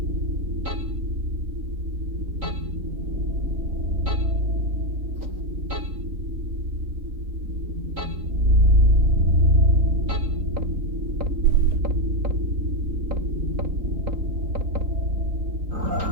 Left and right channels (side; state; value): left; late; 3.9 ms